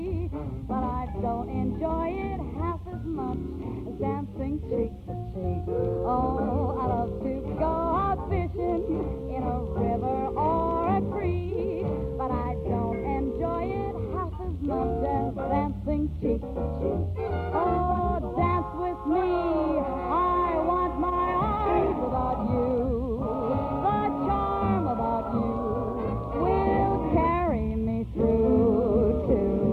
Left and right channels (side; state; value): both; identical; correlation 1.00